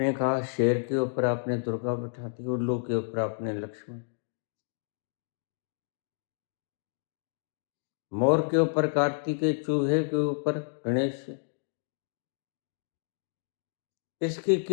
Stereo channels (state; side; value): silent; right; digital silence